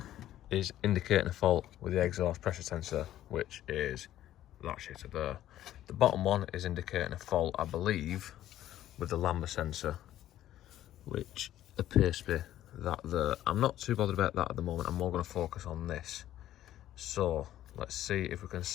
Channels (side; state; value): right; quieter; 12.9 dB